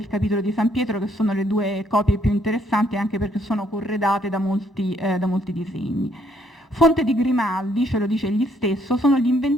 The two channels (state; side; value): normal; both; correlation 0.69